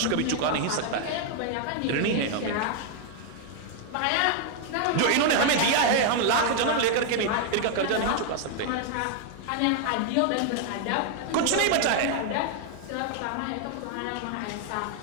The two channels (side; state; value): both; different; correlation 0.00